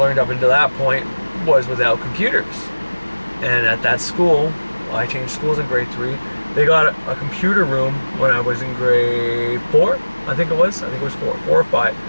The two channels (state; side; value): inverted; both; correlation -1.00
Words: up until that point was without computers. And at that school, I changed schools in grade 3. They got a computer room when I was in grade 4. I think it was 4 or 5.